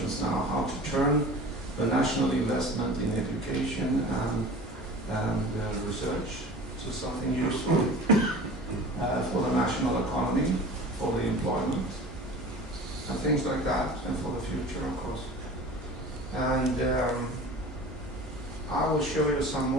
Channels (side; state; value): both; normal; correlation 0.39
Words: now, how to turn the national investment in education and research to something useful for the national economy, for the employment, and things like that, and for the future, of course. And I will show you some